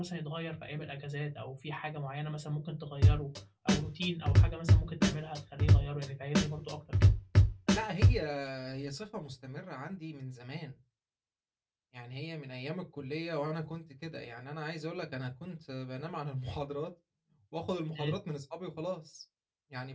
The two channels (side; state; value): both; identical; correlation 1.00